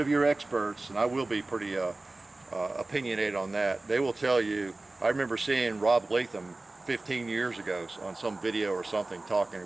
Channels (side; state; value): left; quieter; 3.0 dB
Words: your experts, and I will be pretty opinionated on that, they will tell you, I remember seeing Rob Latham 15 years ago on some video or something talking